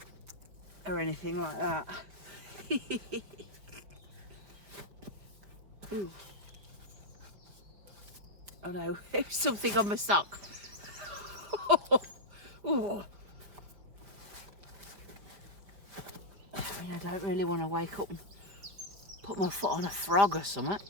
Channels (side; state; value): left; late; 5.0 ms